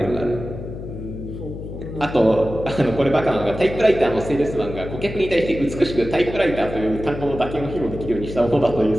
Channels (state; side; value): noise; left; hum, 9 dB below the sound